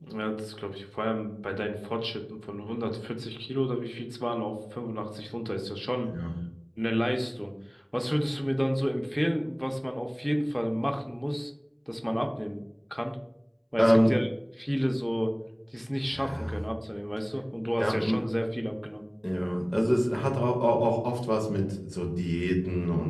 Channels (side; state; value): both; identical; correlation 1.00